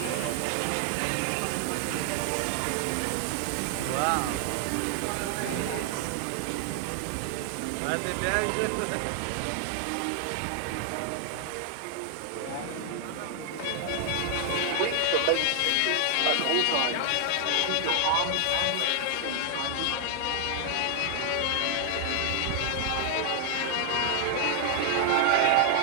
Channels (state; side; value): different; both; correlation 0.00